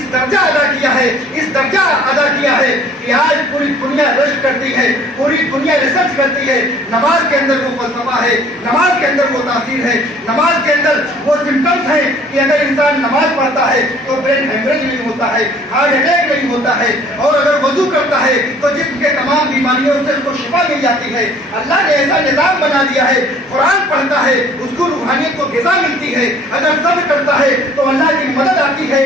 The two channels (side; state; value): both; normal; correlation 0.54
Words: درجہ ادا کیا ہے، اس درجہ ادا کیا ہے کہ آج پوری دنیا رشک کرتی ہے، پوری دنیا ریسرچ کرتی ہے، نماز کے اندر وہ فلسفہ ہے، نماز کے اندر وہ تاثیر ہے، نماز کے اندر وہ سمپٹمس ہیں کہ اگر انسان نماز پڑھتا ہے تو برین ہیمریج نہیں ہوتا ہے، ہارٹ اٹیک نہیں ہوتا ہے، اور اگر وضو کرتا ہے تو جسم کے تمام بیماریوں سے اس کو شفا مل جاتی ہے۔ اللہ نے ایسا نظام بنا دیا ہے، قرآن پڑھتا ہے اس کو روحانیت کو غذا ملتی ہے، اگر صبر کرتا ہے تو اللہ کی مدد آتی ہے۔